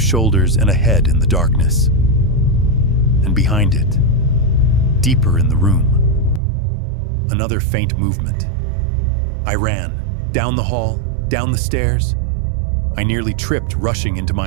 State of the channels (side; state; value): left; drops out; at 6.4 s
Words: shoulders and a head in the darkness. And behind it, deeper in the room, another faint movement. I ran, down the hall, down the stairs. I nearly tripped rushing into